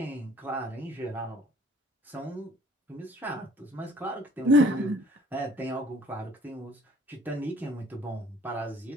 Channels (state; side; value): normal; both; correlation 0.55